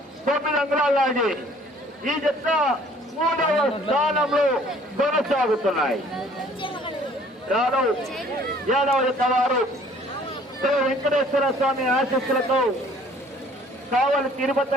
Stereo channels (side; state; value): both; normal; correlation 0.56